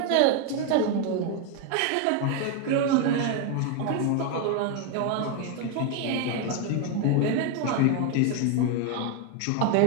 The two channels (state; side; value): different; both; correlation 0.01